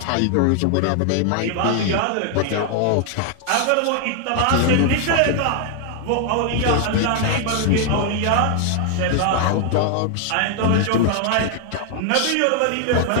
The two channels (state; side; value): different; both; correlation 0.00